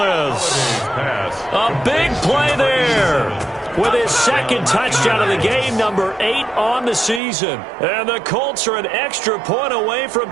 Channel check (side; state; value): left; drops out; at 7.2 s